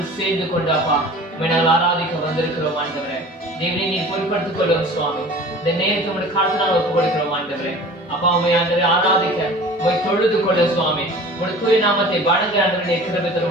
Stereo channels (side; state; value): both; normal; correlation 0.42